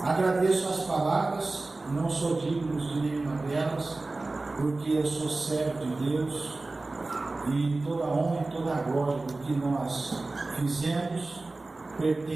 Agradeço as palavras, não sou digno de nenhuma delas, porque eu sou servo de Deus e toda a honra e toda a glória do que nós fizemos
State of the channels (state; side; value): quieter; left; 3.2 dB